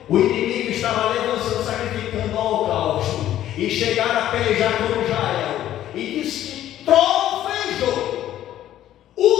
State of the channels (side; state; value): right; quieter; 12.4 dB